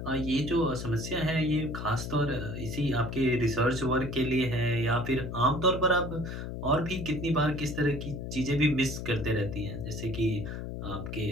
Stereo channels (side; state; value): left; noise; hum, 6 dB below the sound